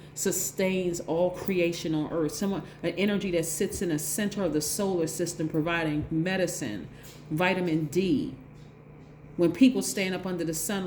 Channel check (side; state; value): both; identical; correlation 1.00